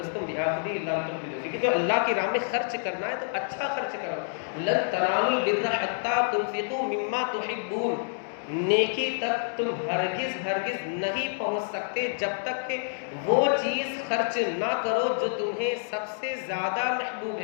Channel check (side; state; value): right; silent; digital silence